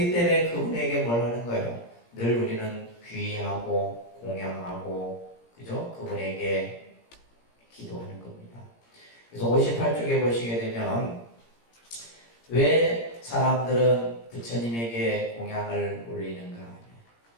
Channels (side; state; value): right; late; 17 ms